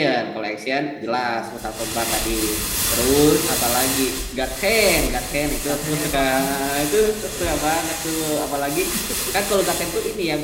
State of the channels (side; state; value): both; identical; correlation 1.00